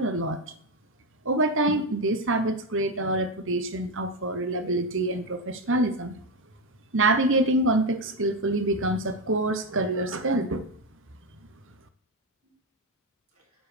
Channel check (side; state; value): both; normal; correlation 0.09